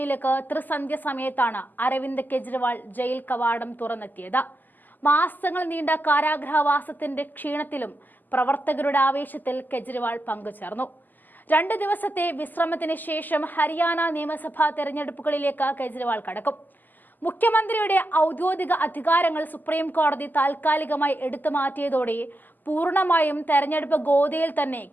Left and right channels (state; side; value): late; right; 0.086 ms